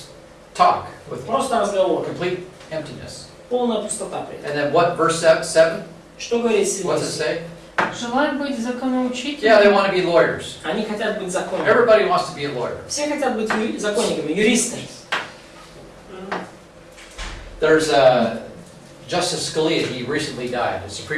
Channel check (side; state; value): both; identical; correlation 1.00